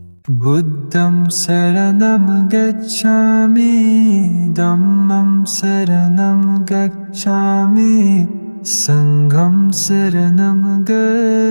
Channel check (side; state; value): both; inverted; correlation -1.00